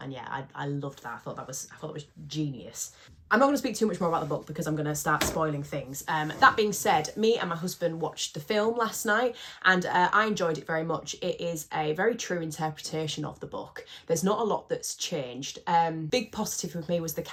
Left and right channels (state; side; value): identical; both; correlation 1.00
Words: yeah, I loved that. I thought that was genius. I'm not going to speak too much more about the book because I'm going to start spoiling things. That being said, me and my husband watched the film last night, and I enjoyed it very much. It is a very true interpretation of the book. There's not a lot that's changed. Big positive with me was the